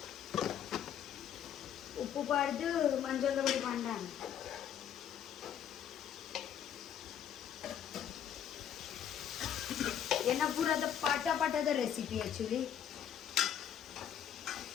ಉಪ್ಪು ಪಾಡ್ದು ಮಂಜಲ್ದ ಪೊಡಿ ಪಾಂಡ ಏನ ಪೂರದ ಪಾಠದ recipe actually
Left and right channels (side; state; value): right; quieter; 9.3 dB